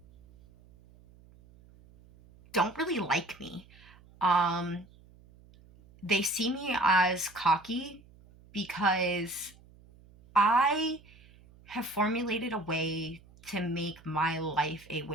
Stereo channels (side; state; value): right; noise; hum, 25 dB below the sound